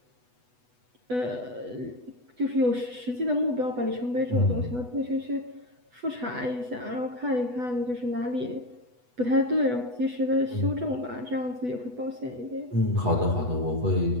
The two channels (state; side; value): late; left; 8.1 ms